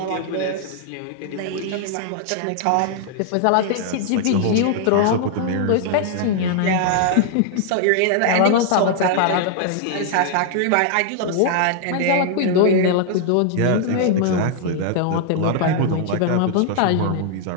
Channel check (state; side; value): different; both; correlation 0.00